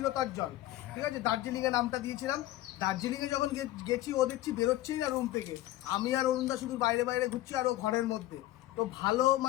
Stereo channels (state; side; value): quieter; right; 15.6 dB